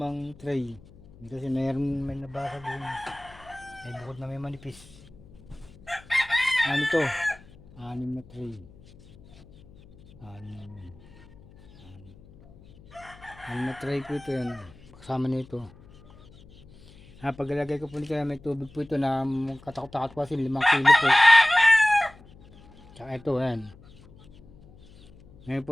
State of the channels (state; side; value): noise; left; hum, 23 dB below the sound